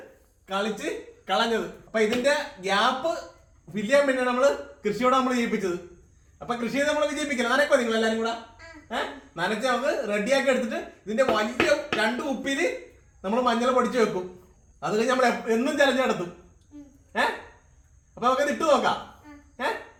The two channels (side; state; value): both; identical; correlation 1.00